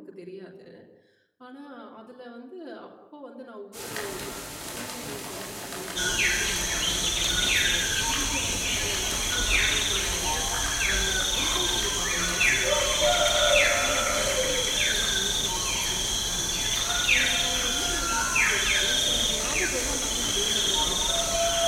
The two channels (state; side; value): identical; both; correlation 1.00